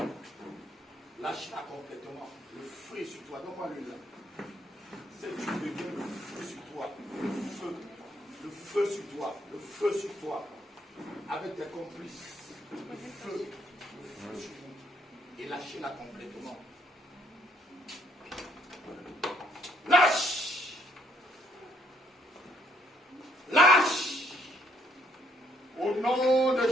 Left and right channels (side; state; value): both; normal; correlation 0.69